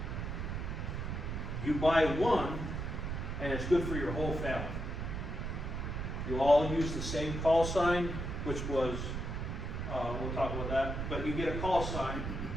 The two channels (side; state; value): right; noise; rumble, 3 dB below the sound